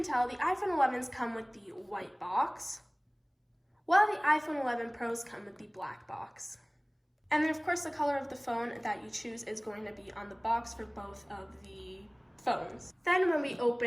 tell, the iPhone 11s come with the white box, while the iPhone 11 Pros come with the black box. And then of course the color of the phone that you choose is going to be on the box for both of the phones. Then when we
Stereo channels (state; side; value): identical; both; correlation 1.00